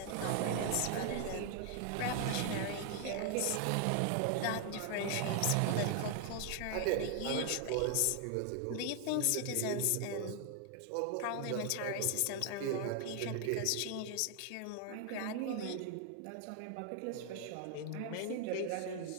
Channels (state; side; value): different; both; correlation 0.00